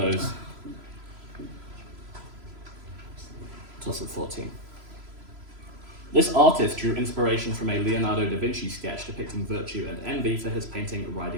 Toss of 14. This artist drew inspiration from a Leonardo da Vinci sketch depicting virtue and envy for his painting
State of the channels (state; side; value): late; left; 3.0 ms